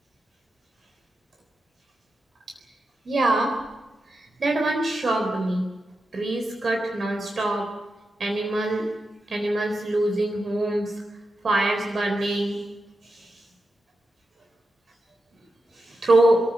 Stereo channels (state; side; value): normal; both; correlation 0.89